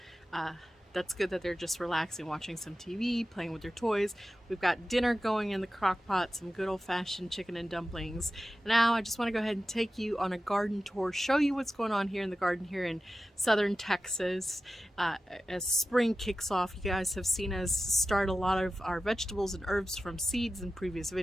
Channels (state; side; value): normal; both; correlation 0.93